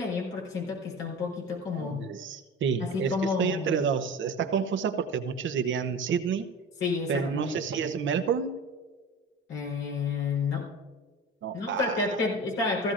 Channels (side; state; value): both; normal; correlation 0.33